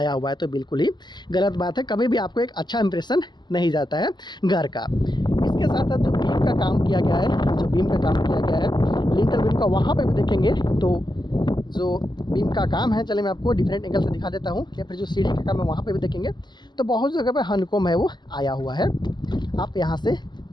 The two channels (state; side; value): late; right; 0.21 ms